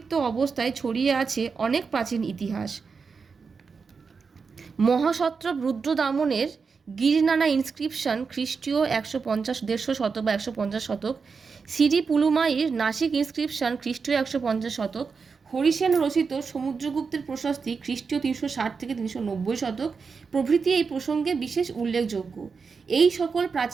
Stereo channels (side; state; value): left; quieter; 5.2 dB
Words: অবস্থায় ছড়িয়ে আছে অনেক প্রাচীন ইতিহাস। মহাসত্রপ রুদ্রদামনের গিরিনানা ইনস্ক্রিপশন খ্রিস্টীয় 150 শতক বা 150 শতক, সিরি পুলুমাইয়ের নাসিক ইনস্ক্রিপশন খ্রিস্টীয় 150 শতক, হরিসেন রচিত সমুদ্রগুপ্তের প্রশস্তি খ্রিস্টীয় 360 থেকে 390 শতক প্রভৃতি এই প্রসঙ্গে বিশেষ উল্লেখযোগ্য। এই সকল